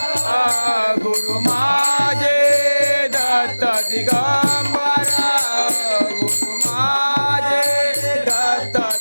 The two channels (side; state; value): both; inverted; correlation -1.00